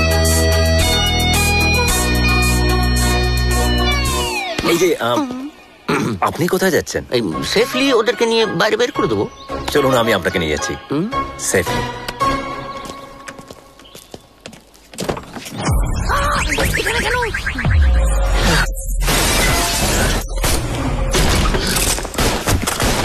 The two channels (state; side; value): identical; both; correlation 1.00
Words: এই যে আপনি কোথায় যাচ্ছেন? এই সেফলি ওদেরকে নিয়ে বাইরে বের করে দেবো। চলুন, আমি আপনাকে নিয়ে যাচ্ছি সেফলি।